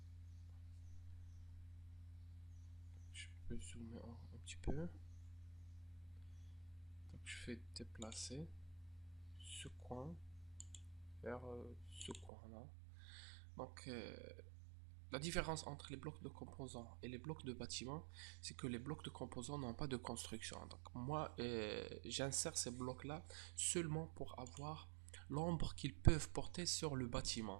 je peux zoomer un petit peu. Donc, je fais déplacer ce coin vers ce coin là. Donc, la différence entre les blocs de composants et les blocs de bâtiment, c'est que les blocs de composants n'ont pas de construction. Donc moi, j'insère ces blocs-là seulement pour avoir l'ombre qu'ils peuvent porter sur le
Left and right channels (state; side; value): drops out; left; at 12.3 s